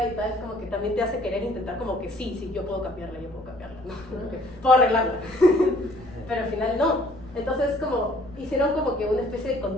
y tal, como que también te hace querer intentar como que sí, yo puedo cambiarla, ¿no? Como que puedo arreglarla. Pero al final no. Entonces como hicieron como que una especie de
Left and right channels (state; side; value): noise; left; rumble, 21 dB below the sound